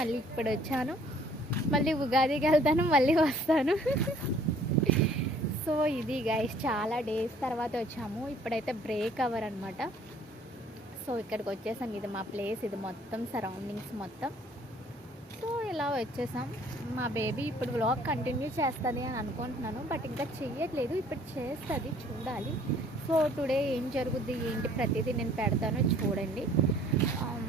ఇప్పుడు వచ్చాను. మళ్ళీ ఉగాదికి వెళ్తాను, మళ్ళీ వస్తాను. సో ఇది గైస్, చాలా డేస్ తర్వాత వచ్చాము. ఇప్పుడైతే బ్రేక్ అవర్ అనమాట. సో ఇక్కడికి వచ్చేసాం. ఇది మా ప్లేస్, ఇది మొత్తం సరౌండింగ్స్ మొత్తం. సో ఇలా వచ్చేసాం. మా బేబీ ఇప్పుడు వ్లాగ్ కంటిన్యూ చేస్తుంది అని అనుకుంటున్నాను, బట్ ఇంకా చెయ్యట్లేదు. ఇప్పుడు చేస్తుంది, చూడాలి. సో టుడే ఏం జరుగుద్ది ఏంటి ప్రతిదీ నేను పెడతాను, చూడండి.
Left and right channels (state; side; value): normal; both; correlation 0.57